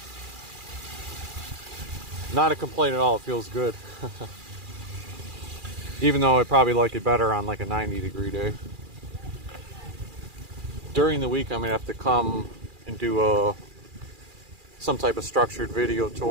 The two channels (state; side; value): late; left; 2.4 ms